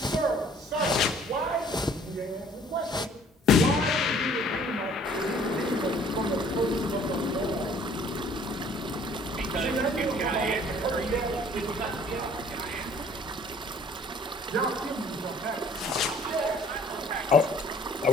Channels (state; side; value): normal; both; correlation 0.56